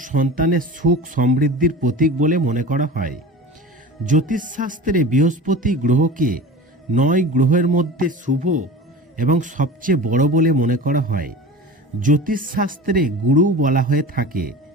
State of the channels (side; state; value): both; normal; correlation 0.35